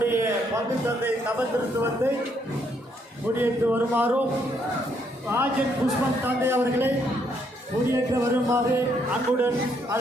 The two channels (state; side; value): normal; both; correlation 0.72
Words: பங்கு தந்தை தவத்திற்கு வந்து முடியேற்று வருமாறும் ராஜன் புஷ்பன் தந்தை அவர்களை முடியேற்ற வருமாறு அன்புடன்